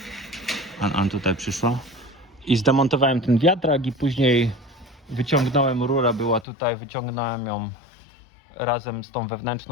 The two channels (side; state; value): right; drops out; at 6.5 s